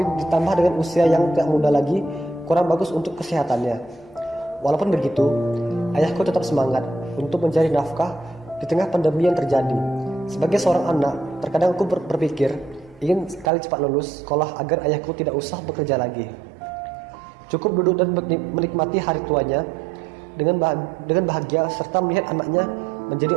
ditambah dengan usia yang tidak muda lagi kurang bagus untuk kesehatannya. Walaupun begitu, ayahku tetap semangat untuk mencari nafkah di tengah pandemi yang terjadi. Sebagai seorang anak, terkadang aku berpikir ingin sekali cepat lulus sekolah agar ayahku tidak usah bekerja lagi. Cukup duduk dan menikmati hari tuanya dengan bahagia serta melihat anaknya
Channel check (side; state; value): left; drops out; at 13.5 s